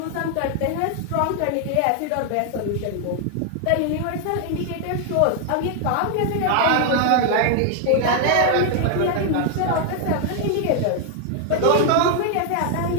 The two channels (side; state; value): both; different; correlation 0.00